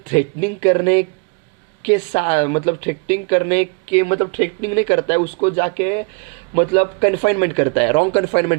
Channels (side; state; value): left; quieter; 34.6 dB